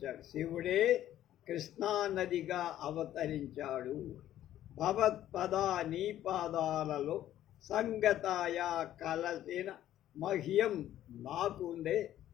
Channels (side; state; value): right; quieter; 12.4 dB